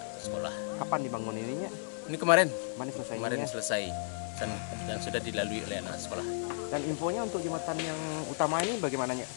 sekolah. Kapan dibangun ininya? Ini kemarin Kemarin selesai dan sudah dilalui oleh anak sekolah. Dan infonya untuk jembatan yang utama ini bagaimananya?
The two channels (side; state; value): right; silent; 55 dB below the other